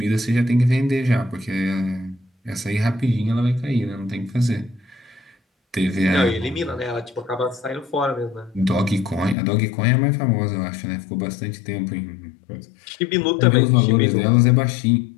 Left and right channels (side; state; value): right; drops out; at 9.3 s